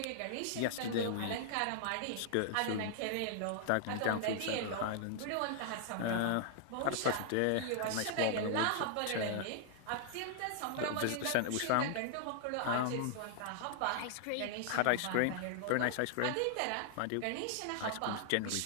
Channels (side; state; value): both; different; correlation -0.01